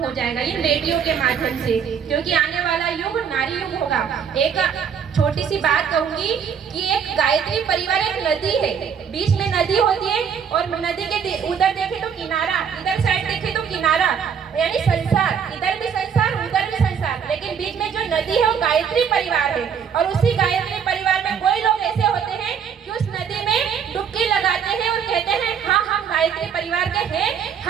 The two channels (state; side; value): quieter; left; 7.3 dB